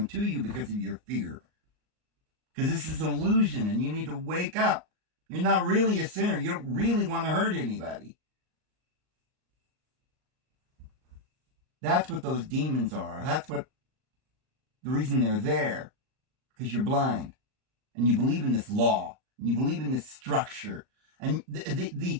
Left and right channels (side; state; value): left; late; 38 ms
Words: to you because of your fear. Because this is an illusion, and you need to wake up. You're not really a sinner. You don't really want to hurt anybody. That's what those demons are. That's what the reason they're there. Because you're blind. And you believe in this law. And you believe in this structure. And the